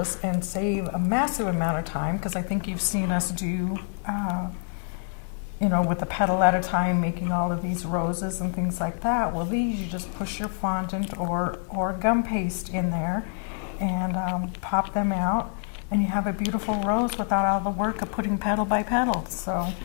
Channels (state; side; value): silent; right; 57 dB below the other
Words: and save a massive amount of time, because I think you've seen us do, you know, with a petal at a time, making all of these roses and things like that. Well, these you just push your fondant or gum paste in there and pop them out, and you have a beautiful rose without all the work of putting petal by petal. So